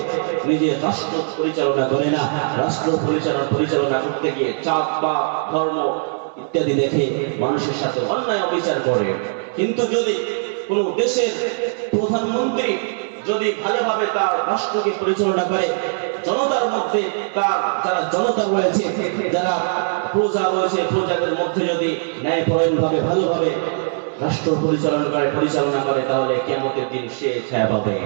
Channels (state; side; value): silent; left; digital silence